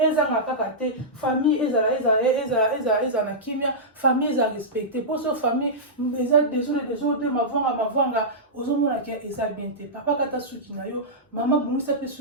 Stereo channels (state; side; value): normal; both; correlation -0.13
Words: kaka te famille ezala na kimia famille eza respecte mposo famille eza desode mavwanga ozomona ke eza bien te papa kata suki na yo mama bongisa mpe